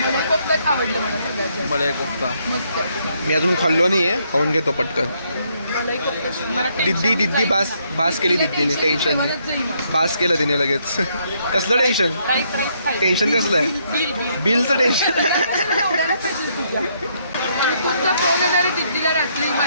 कोफ्ताच आवडलं मला सगळ्यात. मलाई कोफ्ता मस्त. मी अजून खाल्लो नाहीये. खाऊन घेतो पटकन. दिद्दी बास केली दिद्दीने. टेन्शन नाही. बास केलं तिने लगेच. कसलं टेन्शन कसलं आहे? बिलचं टेन्शन. तुमचा फोन येणार दिद्दीला रात्री.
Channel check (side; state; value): both; inverted; correlation -0.72